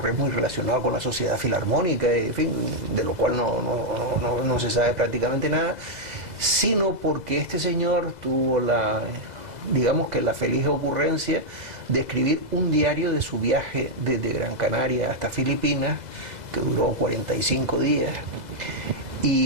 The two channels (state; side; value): late; left; 2.0 ms